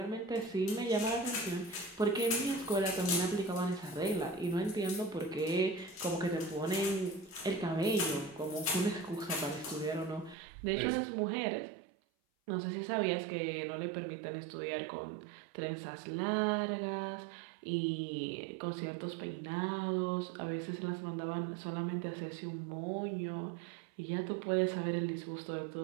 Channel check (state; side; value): drops out; left; at 10.4 s